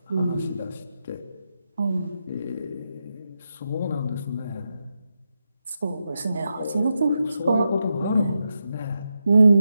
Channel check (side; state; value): both; inverted; correlation -0.86